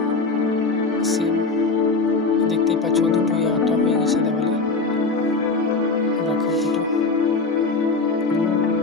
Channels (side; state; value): right; quieter; 3.9 dB